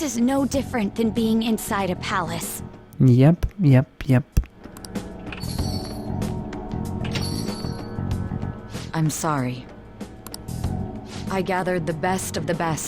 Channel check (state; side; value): identical; both; correlation 1.00